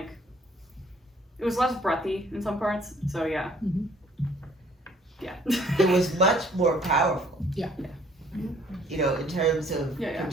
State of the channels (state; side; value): normal; both; correlation 0.59